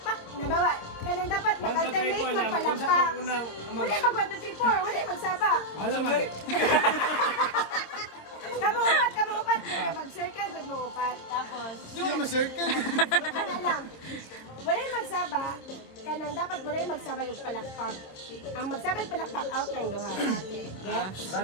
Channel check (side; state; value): right; late; 26 ms